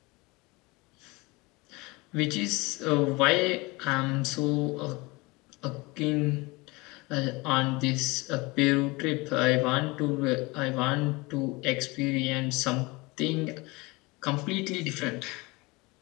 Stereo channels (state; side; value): quieter; right; 24.3 dB